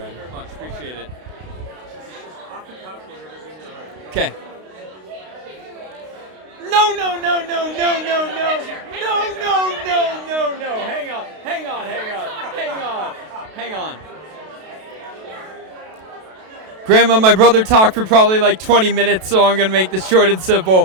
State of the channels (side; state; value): left; late; 32 ms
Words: Thank you very much. Appreciate it. Okay. No. Hang on. Grandma, my brother talked for probably like 20 minutes, so I'm going to make this short and